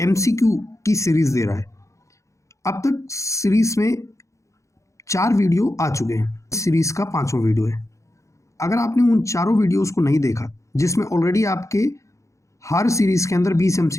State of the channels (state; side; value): late; right; 0.15 ms